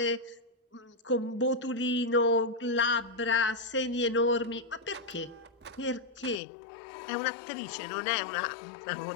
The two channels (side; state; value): right; drops out; at 6.4 s